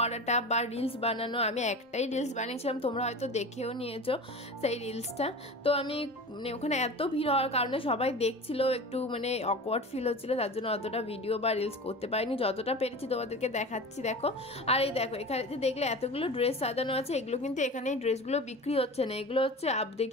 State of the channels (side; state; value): both; normal; correlation 0.33